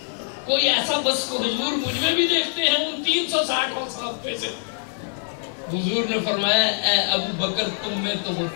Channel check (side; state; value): right; silent; digital silence